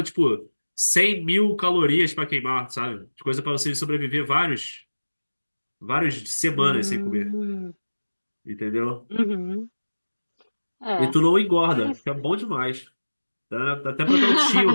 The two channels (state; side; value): inverted; both; correlation -1.00